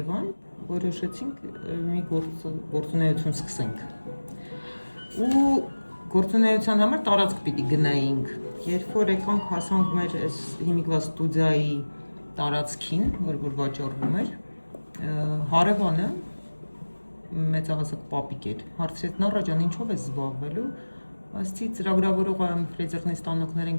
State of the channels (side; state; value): both; inverted; correlation -1.00